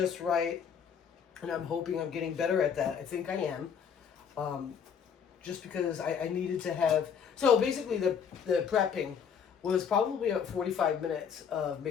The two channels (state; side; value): quieter; right; 7.2 dB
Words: right, and I'm hoping I'm getting better at that. I think I am. Just because I needed to have. So basically, the prepping was probably about 45 minutes of